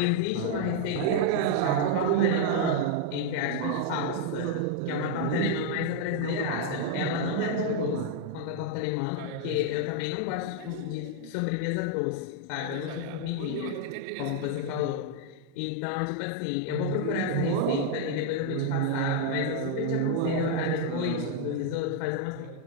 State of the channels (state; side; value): different; both; correlation -0.01